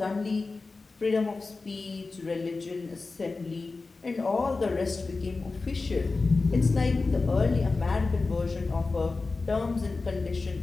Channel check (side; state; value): right; quieter; 3.8 dB